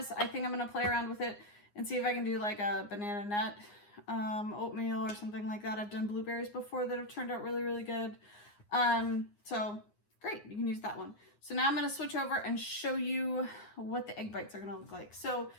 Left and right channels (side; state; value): right; late; 9.7 ms